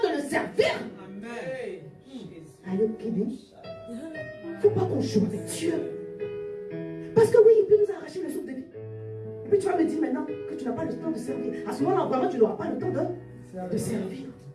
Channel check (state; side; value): identical; both; correlation 1.00